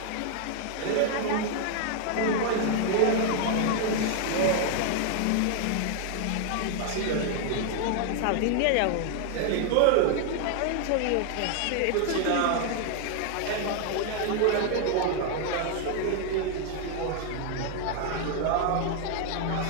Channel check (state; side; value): different; both; correlation 0.00